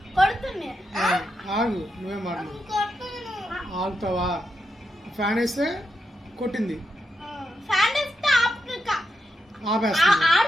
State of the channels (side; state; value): both; normal; correlation 0.84